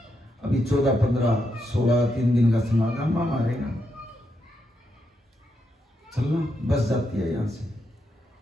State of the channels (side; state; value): both; normal; correlation 0.82